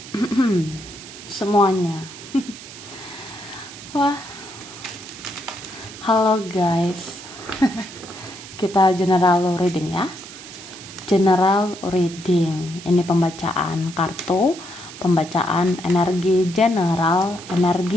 semuanya. Wah, halo guys. Kita general reading ya. General reading. Ini pembacaan kartu, pembacaan energi general,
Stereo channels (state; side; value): noise; right; hiss, 15 dB below the sound